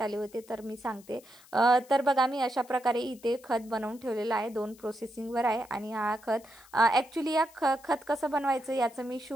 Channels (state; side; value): noise; left; hiss, 24 dB below the sound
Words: आले होते, तर मी सांगते. तर बघा मी अशा प्रकारे इथे खत बनवून ठेवलेलं आहे. 2 प्रोसेसिंगवर आहे आणि हा खत ॲक्च्युली या खत कसं बनवायचं याचं मी